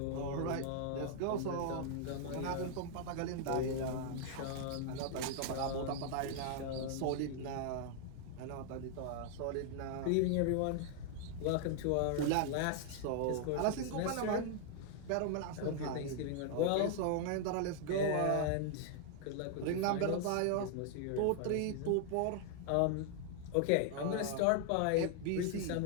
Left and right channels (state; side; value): different; both; correlation 0.00